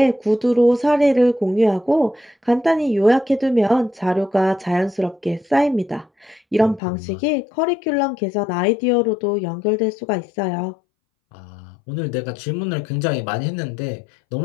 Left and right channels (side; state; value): right; drops out; at 6.8 s